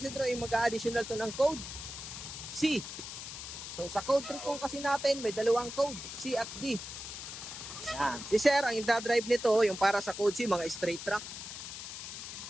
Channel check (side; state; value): left; noise; hiss, 9 dB below the sound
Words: ay mag-additional to ng code C. So sa code 3 po kasi natin, may dalawang code, C at D. Yan. Si Sir, ang i-drive nito, yung para sa code C, mga straight track.